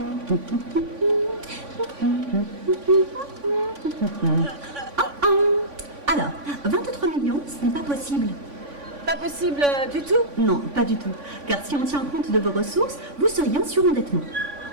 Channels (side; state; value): left; late; 3.5 ms